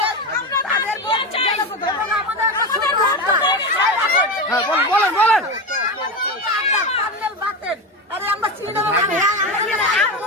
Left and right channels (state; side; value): normal; both; correlation 0.19